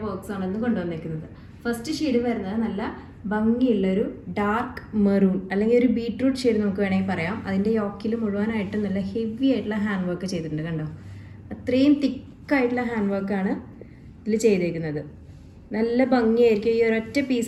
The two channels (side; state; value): both; identical; correlation 1.00